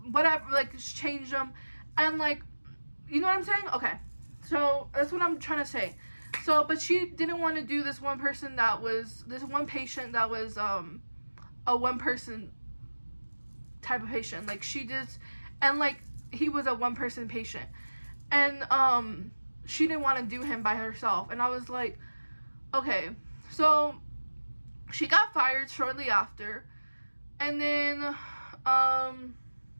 like change them, and like, you know what I'm saying? Okay, so that's what I'm trying to say. So but she didn't want to do this one patient that was a one person type of patient, like she just, and like he was a one person patient, and she didn't want to do him by herself. And I was like, okay. So she got fired shortly after, and then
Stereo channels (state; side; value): inverted; both; correlation -1.00